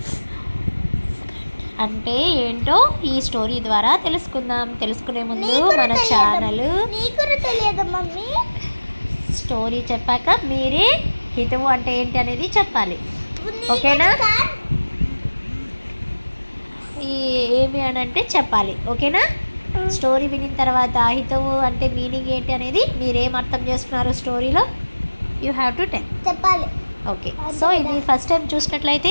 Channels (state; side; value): inverted; both; correlation -1.00